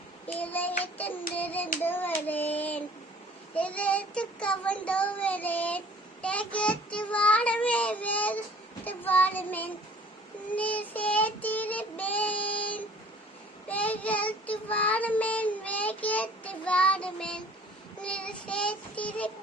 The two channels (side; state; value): both; normal; correlation 0.51